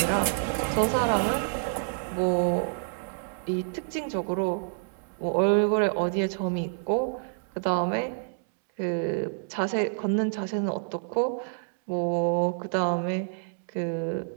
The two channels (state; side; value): silent; left; digital silence